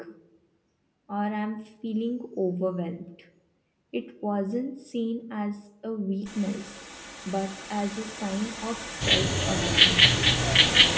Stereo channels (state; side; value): identical; both; correlation 1.00